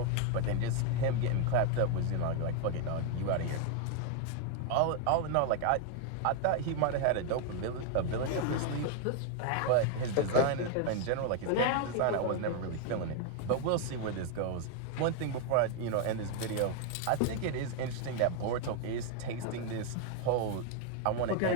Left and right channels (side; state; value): both; different; correlation 0.01